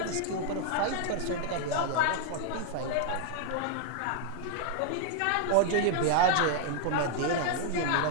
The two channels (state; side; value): different; both; correlation 0.00